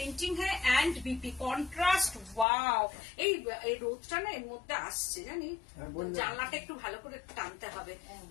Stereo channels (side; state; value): right; drops out; at 2.5 s